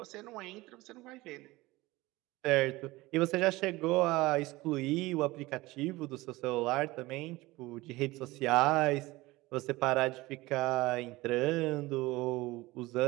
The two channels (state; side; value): quieter; left; 20.2 dB